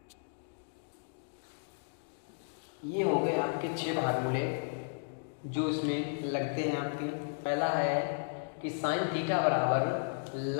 ये हो गए आपके 6 फार्मूले जो इसमें लगते हैं आपके। पहला है कि साइन थीटा बराबर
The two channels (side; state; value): right; silent; digital silence